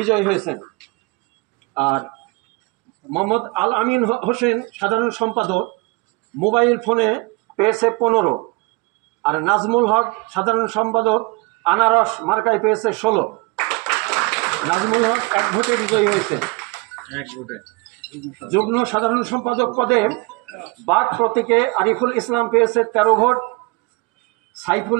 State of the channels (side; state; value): left; quieter; 26.3 dB